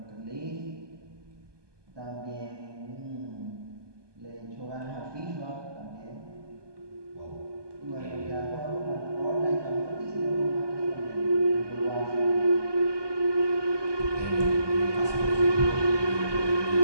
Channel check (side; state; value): left; late; 1.2 ms